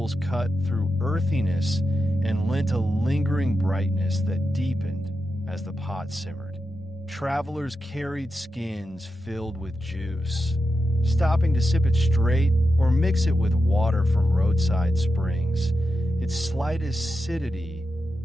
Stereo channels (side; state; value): both; normal; correlation 0.89